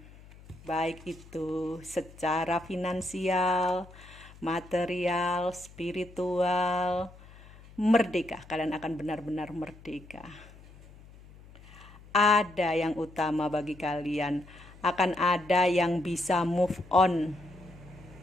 Baik itu secara finansial, material, spiritual, merdeka. Kalian akan benar-benar merdeka. Ada yang utama bagi kalian, akan ada yang bisa move on,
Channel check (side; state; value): left; noise; hum, 21 dB below the sound